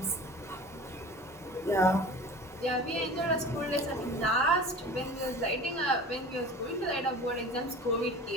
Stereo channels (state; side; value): normal; both; correlation 0.39